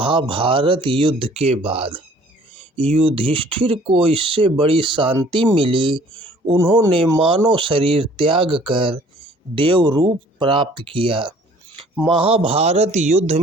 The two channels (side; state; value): both; normal; correlation 0.54